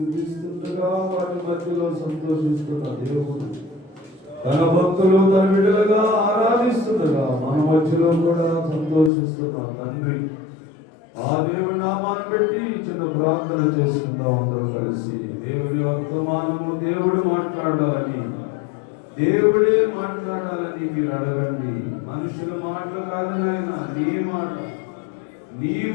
వారి మధ్యలో సంతోషిస్తున్న దేవుడు తన భక్తులు తన బిడ్డలుగా ఆరాధిస్తుండగా మన మధ్యలో కూడా సంతోషిస్తున్న తండ్రి ఆ దేవుని నామాన్ని పెట్టి చిన్న ప్రార్థన చేసుకుందాం అందరూ కలిసి. దేవుని వర్తమానము దేవుడు మాట్లాడాలని, దేవుడే మాట్లాడాలని మీరు అడగండి. మనుషుల మాటలు కాదు నాయన, నీ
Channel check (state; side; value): drops out; right; at 9.1 s